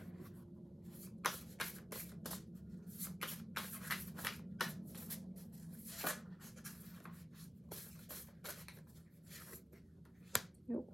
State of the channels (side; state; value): both; normal; correlation 0.96